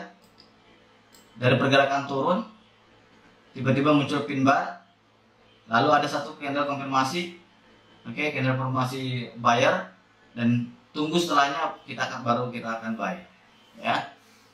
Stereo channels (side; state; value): both; identical; correlation 1.00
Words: dari pergerakan turun tiba-tiba muncul pin bar, lalu ada satu candle konfirmasi, oke, candle konfirmasi buyer, dan tunggu setelahnya baru kita akan buy, ya.